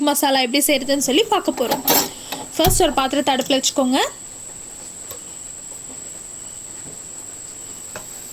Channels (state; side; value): identical; both; correlation 1.00